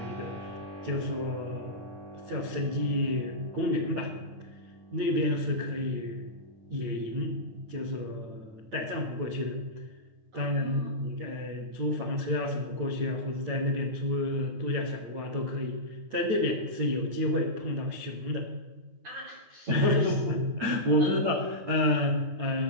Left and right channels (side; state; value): left; late; 8.9 ms